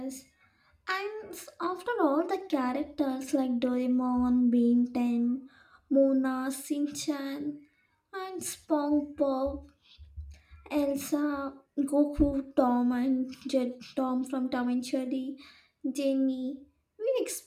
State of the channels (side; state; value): both; identical; correlation 1.00